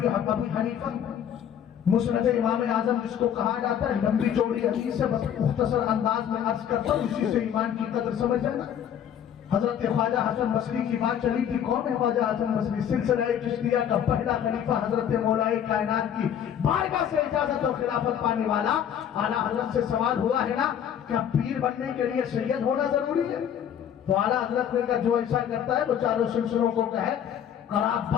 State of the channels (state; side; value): quieter; right; 9.3 dB